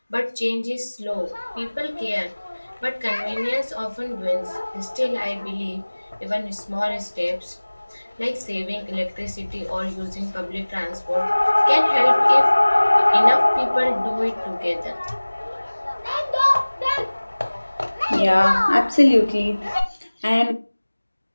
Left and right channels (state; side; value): inverted; both; correlation -1.00